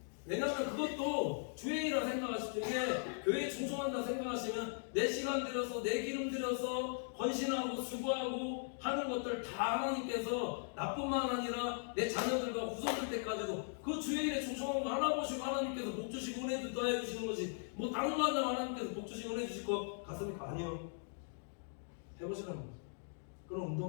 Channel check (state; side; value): silent; right; digital silence